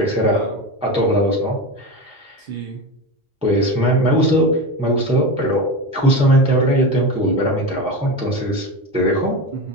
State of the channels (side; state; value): both; normal; correlation 0.22